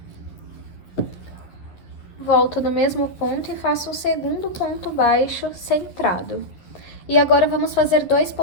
Volto no mesmo ponto e faço o segundo ponto baixo centrado. E agora vamos fazer 2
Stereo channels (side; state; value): right; late; 11 ms